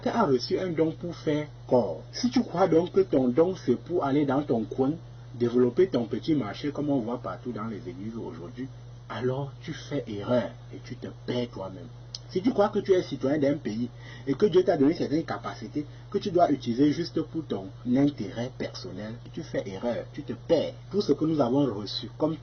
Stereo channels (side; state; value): both; identical; correlation 1.00